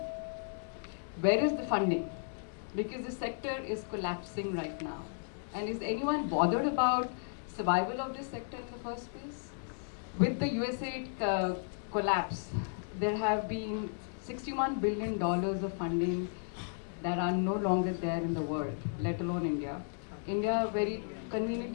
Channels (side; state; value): right; silent; digital silence